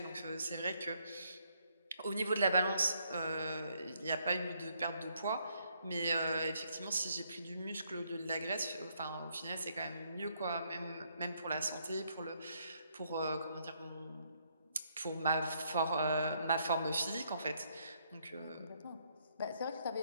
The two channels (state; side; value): inverted; both; correlation -0.72